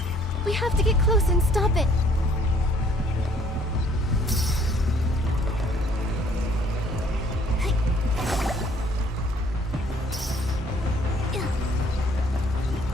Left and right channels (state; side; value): normal; both; correlation 0.60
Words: We have to get close and stop it.